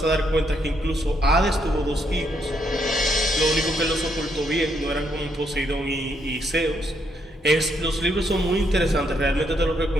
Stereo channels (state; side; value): normal; both; correlation 0.75